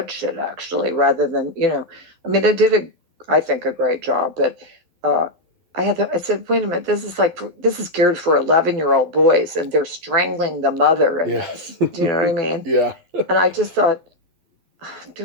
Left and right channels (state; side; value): late; left; 12 ms